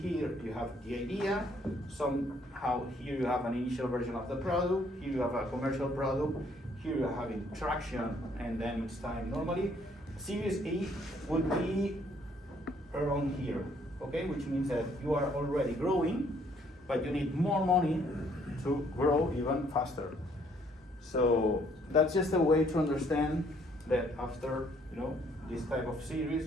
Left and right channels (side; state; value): both; normal; correlation 0.65